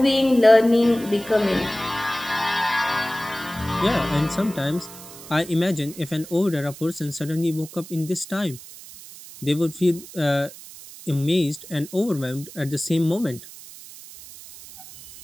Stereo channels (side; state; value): right; noise; hiss, 16 dB below the sound